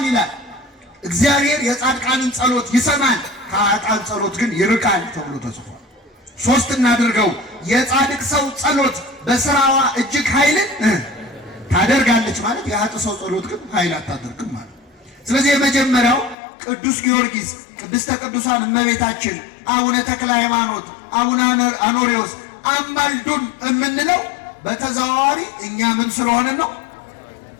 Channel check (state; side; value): drops out; right; at 16.4 s